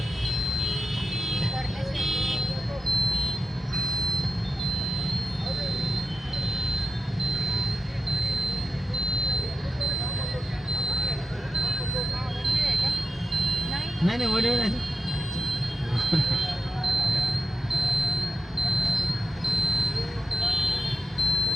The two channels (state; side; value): normal; both; correlation 0.89